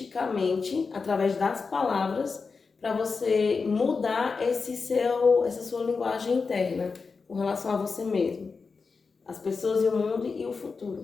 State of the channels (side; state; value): right; quieter; 4.7 dB